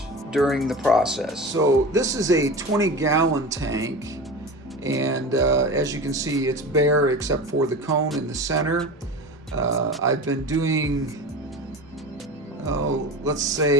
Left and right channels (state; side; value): normal; both; correlation 0.31